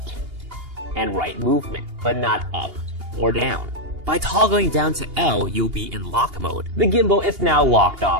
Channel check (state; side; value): late; left; 2.8 ms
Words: and right movement, but not up or down. By toggling down to L, you'll be in lock mode. The gimbal is now locked